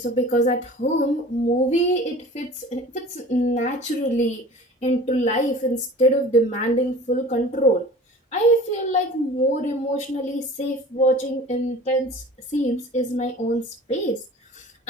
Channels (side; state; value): both; normal; correlation 0.42